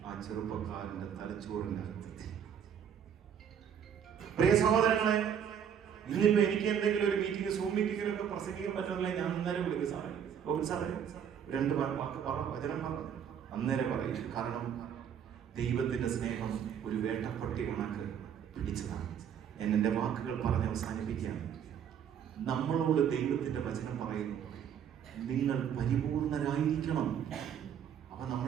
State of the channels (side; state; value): left; quieter; 8.5 dB